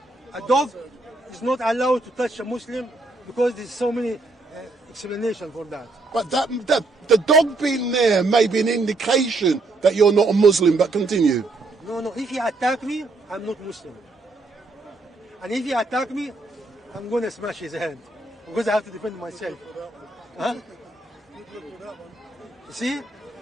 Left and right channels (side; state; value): left; quieter; 3.2 dB